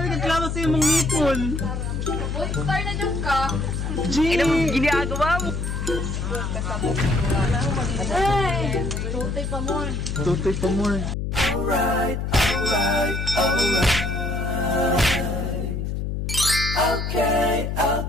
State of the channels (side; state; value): left; noise; hum, 3 dB below the sound